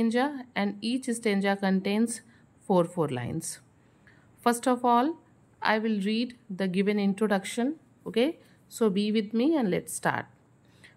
and each stanza contains 4 lines. First of all, I will read the given introduction. Okay, so be with me and let's start.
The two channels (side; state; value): both; identical; correlation 1.00